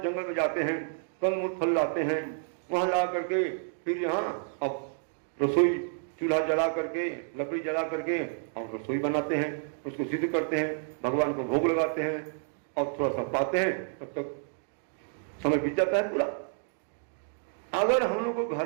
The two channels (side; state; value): left; silent; 58 dB below the other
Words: जंगल में जाते हैं कंद फल लाते हैं, वहां ला करके फिर यहाँ अब रसोई चूल्हा जला करके, लकड़ी जला करके और रसोई बनाते हैं, उसको सिद्ध करते हैं, भगवान को भोग लगाते हैं और थोड़ा सा पाते हैं, तब तक समय बीत जाता है पूरा। अगर हम लोग को